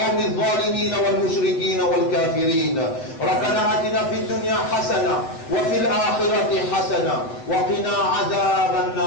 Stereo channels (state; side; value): late; right; 7.6 ms